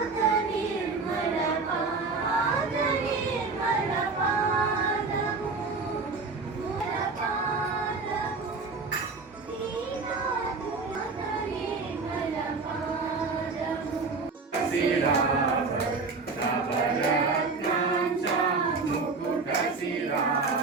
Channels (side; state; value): left; quieter; 4.2 dB